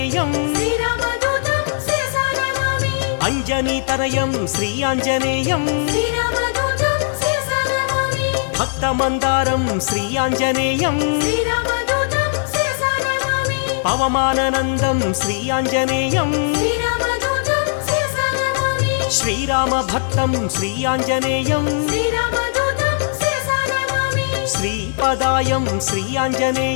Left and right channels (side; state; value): right; silent; 67 dB below the other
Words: श्रीरामदूतं शिरसा नमामि अञ्जनीतनयं श्रीआञ्जनेयं श्रीरामदूतं शिरसा नमामि भक्तमन्दारं श्रीआञ्जनेयं श्रीरामदूतं शिरसा नमामि पवमाननन्दं श्रीआञ्जनेयं श्रीरामदूतं शिरसा नमामि श्रीरामभक्तं श्रीआञ्जनेयं श्रीरामदूतं शिरसा नमामि श्रीपदायं